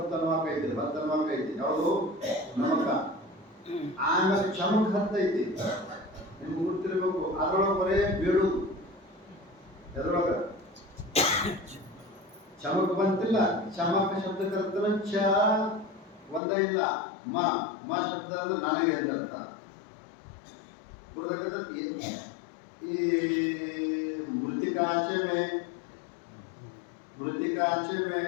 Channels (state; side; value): drops out; right; at 16.4 s